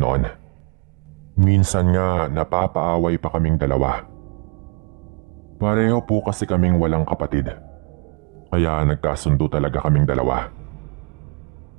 Minsan nga napapaaway pa kaming dalawa. Pareho po kasi kaming walang kapatid. Kaya nagkasundo talaga kaming dalawa.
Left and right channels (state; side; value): quieter; left; 30.4 dB